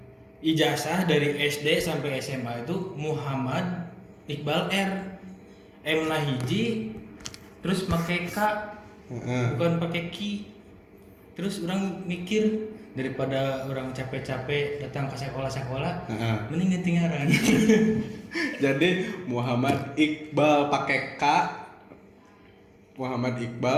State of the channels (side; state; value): both; identical; correlation 1.00